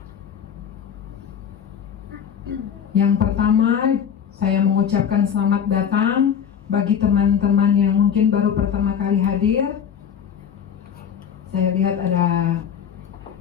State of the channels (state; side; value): quieter; right; 8.0 dB